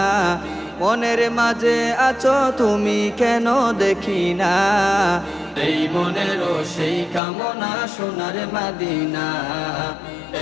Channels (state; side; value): drops out; right; at 7.2 s